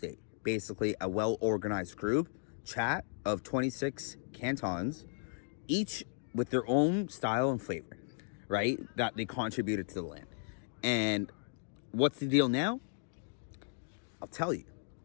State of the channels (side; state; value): right; silent; digital silence